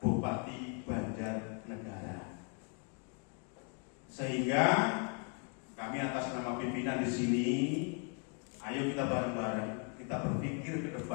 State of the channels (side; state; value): right; quieter; 39.0 dB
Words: Bupati Banjarnegara. Sehingga kami atas nama pimpinan di sini, ayo kita bareng-bareng, kita berpikir ke